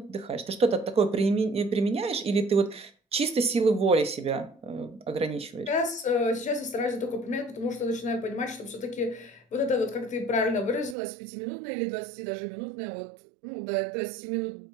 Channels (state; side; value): drops out; left; at 11.0 s